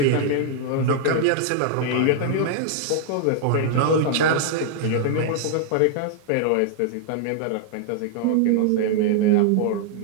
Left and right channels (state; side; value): different; both; correlation 0.00